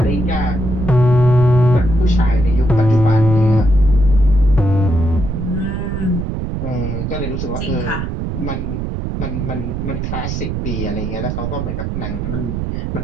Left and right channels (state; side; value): noise; right; rumble, 4 dB below the sound